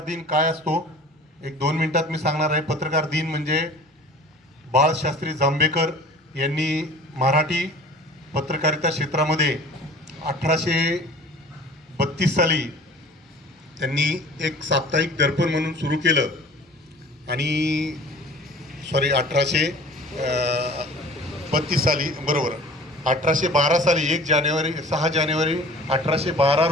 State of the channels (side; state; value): both; normal; correlation 0.44